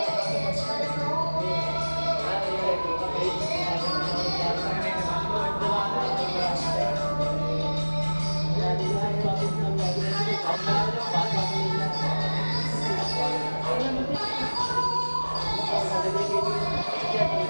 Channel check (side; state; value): both; inverted; correlation -1.00